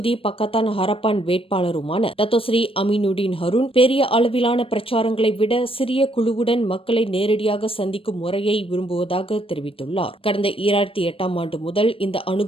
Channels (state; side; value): late; right; 0.27 ms